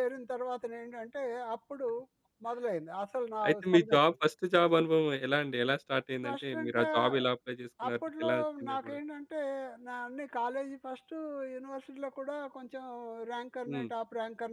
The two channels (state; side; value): identical; both; correlation 1.00